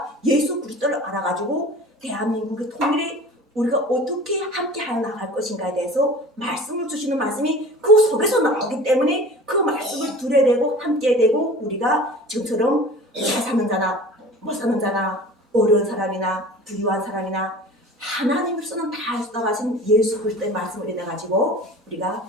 예수 그리스도를 알아가지고 대한민국의 통일에 우리가 어떻게 함께 하여 나갈 것인가에 대해서 말씀을 주시는 말씀이 그 속에서 나오기 때문에 그 말씀을 들어야 되고 함께 되고 우리가 지금처럼 잘 사는 자나 못 사는 자나 어려운 사람이나 부유한 사람이나 하나님으로서는 다 쏟아가신 예수 그리스도의 말씀을 인해가지고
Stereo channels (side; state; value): both; normal; correlation 0.40